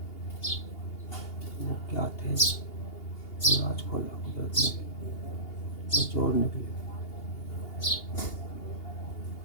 वो क्या थे वो राज खोला कुदरत ने। वो चोर निकले,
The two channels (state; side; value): late; right; 2.8 ms